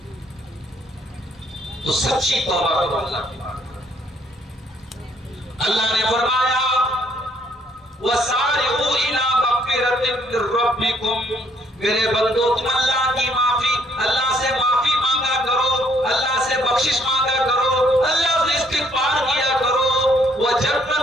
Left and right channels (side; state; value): both; normal; correlation 0.66